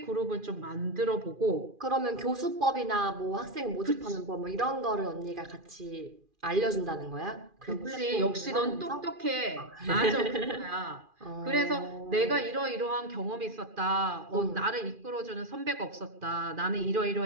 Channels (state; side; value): late; left; 2.4 ms